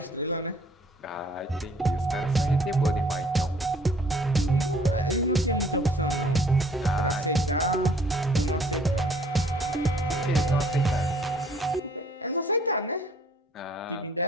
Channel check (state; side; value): normal; both; correlation 0.58